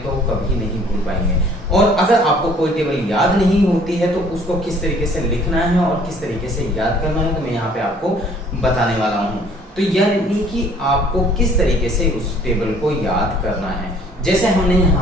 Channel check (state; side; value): normal; both; correlation 0.57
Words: तो कभी नहीं भूल पाएंगे। और अगर आपको कोई टेबल याद नहीं होती है तो उसको किस तरीके से लिखना है और किस तरीके से याद करना है, तो मैं यहाँ पे आपको बताने वाला हूँ। तो यह नहीं कि आपको किस तरीके से उस टेबल को याद करना है। जैसे हमने